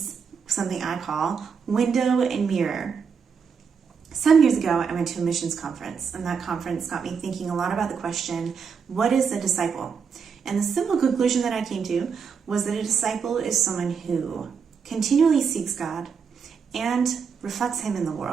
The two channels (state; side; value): quieter; left; 6.2 dB